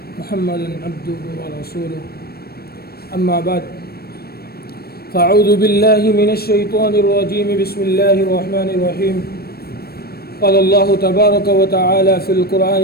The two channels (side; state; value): right; late; 0.45 ms